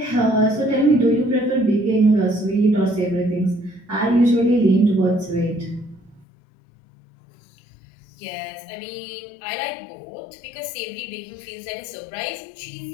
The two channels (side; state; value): right; drops out; at 6.2 s